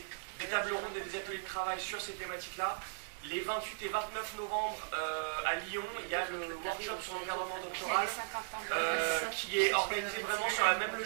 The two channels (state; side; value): silent; left; digital silence